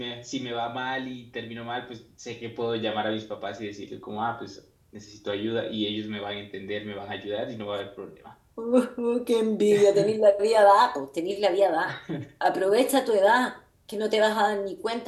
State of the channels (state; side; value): identical; both; correlation 1.00